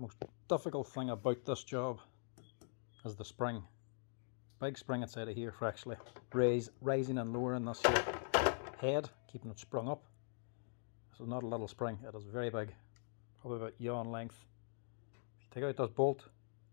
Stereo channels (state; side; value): silent; right; digital silence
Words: difficult thing about this job is the spring. Big spring inside of here for actually raising and lowering this here head, keeping it sprung up. This is not a little spring, it is very big, probably about yawn length. If you take out this bolt,